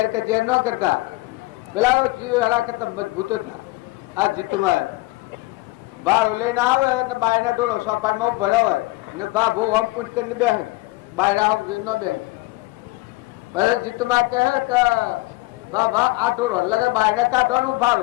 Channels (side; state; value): right; quieter; 21.4 dB